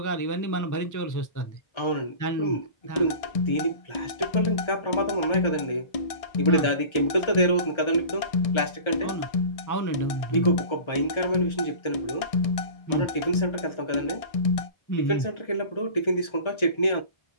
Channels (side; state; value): right; late; 1.3 ms